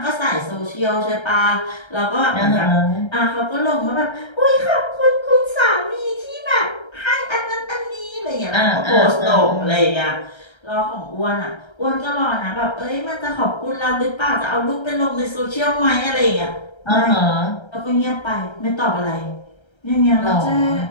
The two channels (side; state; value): right; late; 1.3 ms